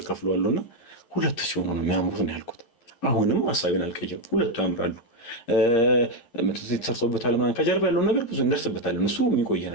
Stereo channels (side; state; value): right; late; 11 ms